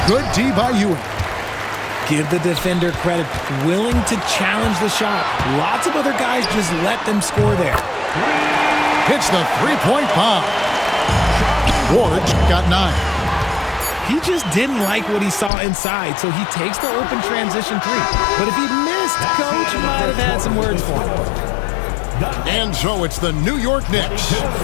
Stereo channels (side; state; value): right; drops out; at 15.5 s